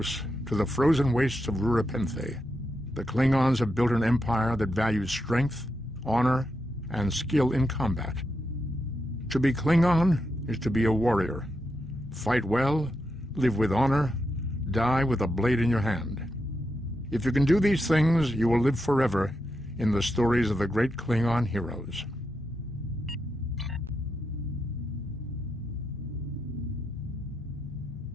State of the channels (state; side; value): normal; both; correlation 0.85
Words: to the frozen wastes of Rurapenthe, the Klingons have built an empire that values strength, honor, and skill in combat. To be Klingon is to be a warrior. Fight well, live with honor, die with a blade in your hand. If you can do these things, you will live forever in the stories of the great Klingon heroes.